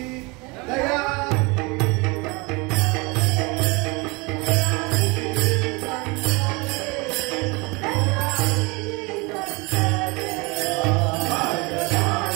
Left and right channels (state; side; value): quieter; left; 27.0 dB